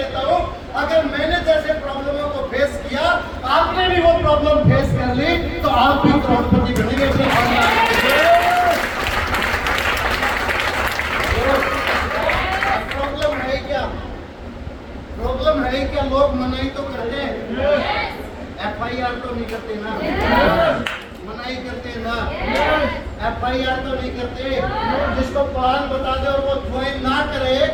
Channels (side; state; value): both; identical; correlation 1.00